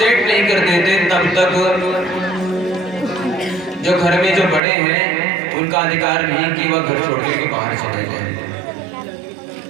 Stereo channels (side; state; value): left; drops out; at 4.6 s